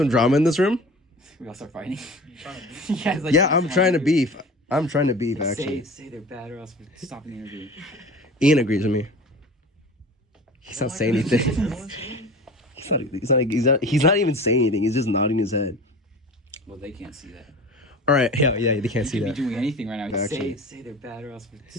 drama in this room? We all start fighting. You trying to beef? Yeah, Yeah, I'm trying to beef. I'm trying to beef actually. Say they're bad or else we're stopping the interview. Ian agrees with me. He's not saying anything. He's not even saying anything. He's just nodding his head. Well, they can't see that. All right. Yeah, they can't see He that. could be doing anything right now. Actually. Say they're bad or else we're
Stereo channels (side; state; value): both; normal; correlation 0.37